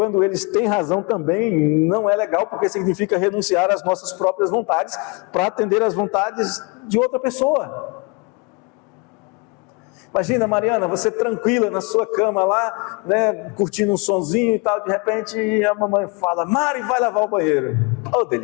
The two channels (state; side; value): quieter; right; 30.1 dB